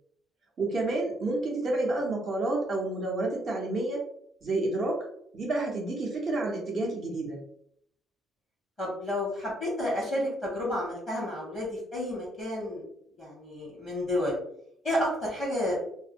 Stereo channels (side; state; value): both; normal; correlation 0.70